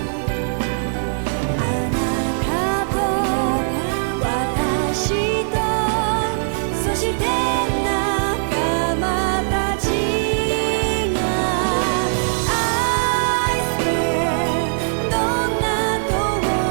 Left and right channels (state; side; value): silent; left; 65 dB below the other